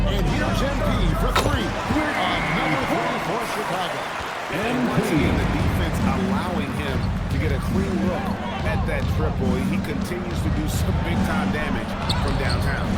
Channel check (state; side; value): identical; both; correlation 1.00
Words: And here's MP for three. Number 3 for Chicago. And once again, the defense allowing him to get a clean look at that triple. He continues to do some big-time damage from downtown.